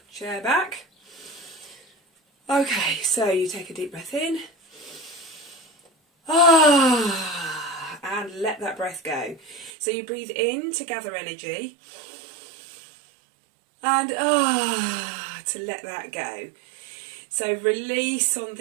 chair back. Okay, so you take a deep breath in. And let that breath go. So you breathe in to gather energy. And to let that go. So release on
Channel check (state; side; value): drops out; left; at 9.7 s